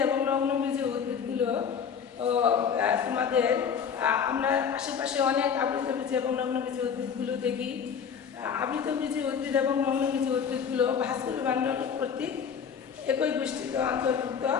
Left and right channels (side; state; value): right; quieter; 7.1 dB